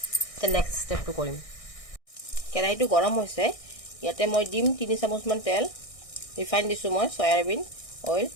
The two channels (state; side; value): late; right; 1.6 ms